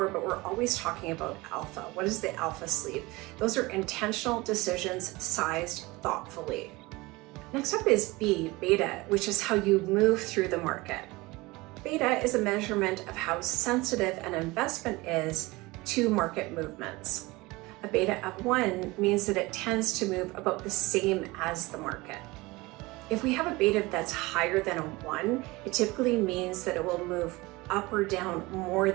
but we're always talking about alpha. What is the alpha sleeve? Those are intentional decisions sized thoughtfully. Next up is B, beta, which is how you move through the market. Beta is a measurement of how sensitive an investment is to market movements. A beta of 1 means that it tends to move about the same as the market. If we have a beta that's higher than a 1, it typically means that it will move up or down more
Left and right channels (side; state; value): left; quieter; 22.1 dB